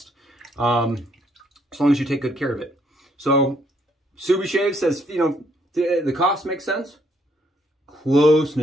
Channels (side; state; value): both; normal; correlation 0.70